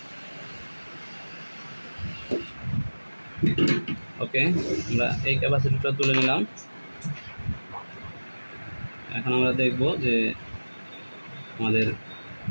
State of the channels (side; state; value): both; inverted; correlation -1.00